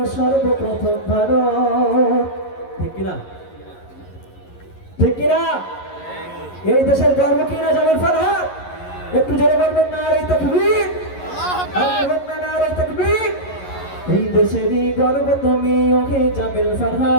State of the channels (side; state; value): right; late; 11 ms